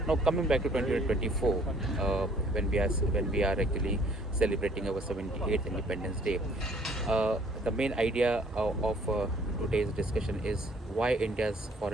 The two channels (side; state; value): both; normal; correlation 0.59